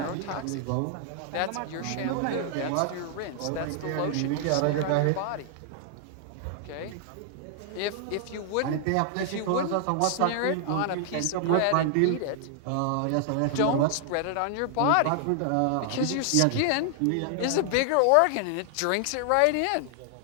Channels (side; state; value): both; different; correlation 0.00